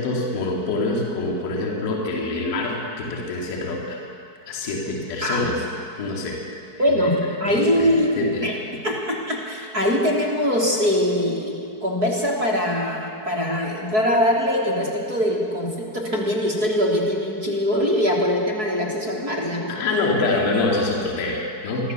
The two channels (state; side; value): late; left; 4.6 ms